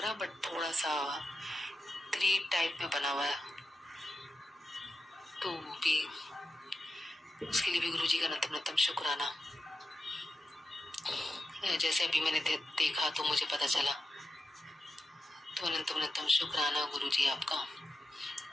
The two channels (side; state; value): both; normal; correlation 0.91